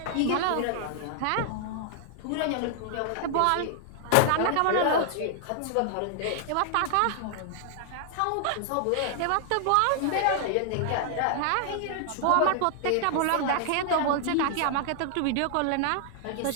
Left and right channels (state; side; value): different; both; correlation 0.00